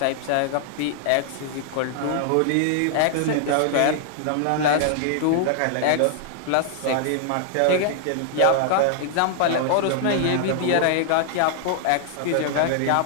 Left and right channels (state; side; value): different; both; correlation -0.01